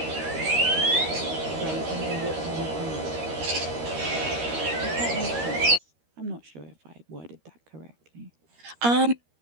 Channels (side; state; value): left; late; 13 ms